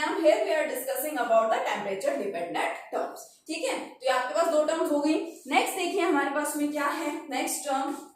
हम, here we are discussing about the temperature dependent terms. ठीक है, तो ये आपके पास दो टर्म्स हो गई। नेक्स्ट देखिए हमारे पास में क्या है, next term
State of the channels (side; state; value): both; identical; correlation 1.00